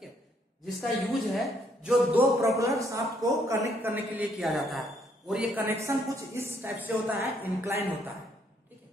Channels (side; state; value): both; normal; correlation 0.69